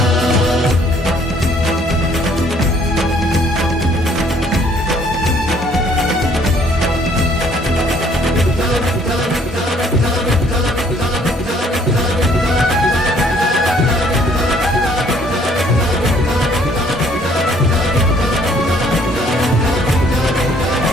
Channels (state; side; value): normal; both; correlation 0.62